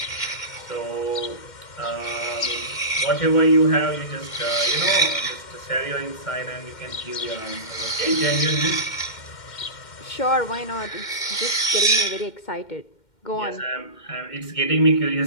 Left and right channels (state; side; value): late; right; 2.1 ms